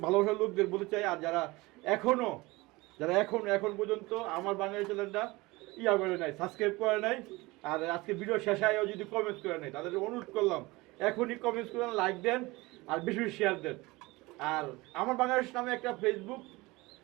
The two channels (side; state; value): left; quieter; 22.1 dB